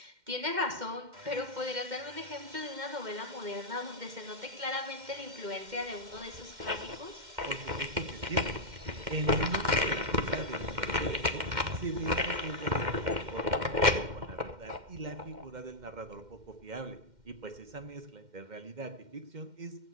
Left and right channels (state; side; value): late; left; 2.1 ms